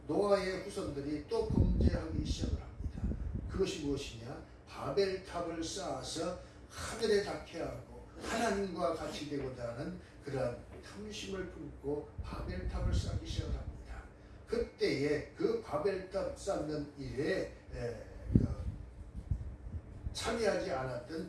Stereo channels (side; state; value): both; identical; correlation 1.00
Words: 노아의 후손들이 또 범죄하기 시작을 합니다. 그것이 무엇이냐? 바벨탑을 쌓아서 하늘에 닿게 하고 하나님과 같이 되고자 하는 그러한 탐심을 품고 바벨탑을 쌓기 시작을 합니다. 그때에 그 바벨탑 쌓는 일에 참여하지